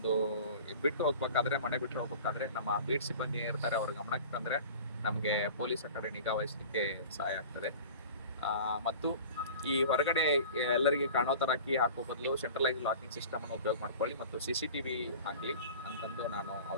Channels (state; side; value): inverted; both; correlation -0.40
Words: ಬಿಟ್ಟು ಹೋಗ್ಬೇಕಾದ್ರೆ, ಮನೆ ಬಿಟ್ಟು ಹೋಗ್ಬೇಕಾದ್ರೆ ನಮ್ಮ ಬೀಟ್ ಸಿಬ್ಬಂದಿ ಇರ್ತಾರೆ, ಅವ್ರ ಗಮನಕ್ಕೆ ತಂದ್ರೆ ನಮಗೆ ಪೊಲೀಸರ ಕಡೆ ನಿಗಾ ವಹಿಸಲಿಕ್ಕೆ ಸಹಾಯ ಆಗ್ತದೆ. ಮತ್ತು ಈ ಹೊರಗಡೆ ಎಲ್ಲರಿಗೆ ಕಾಣೋ ತರ ಕೀ ಹಾಕೋ ಬದಲು ಸೆಂಟ್ರಲೈಸ್ ಲಾಕಿಂಗ್ ಸಿಸ್ಟಮ್ ಅನ್ನು ಉಪಯೋಗ ಮಾಡ್ಕೊಳ್ಳಿ ಮತ್ತು CCTV ಹಾಕಲಿ ಅಂತಂದು ನಾನು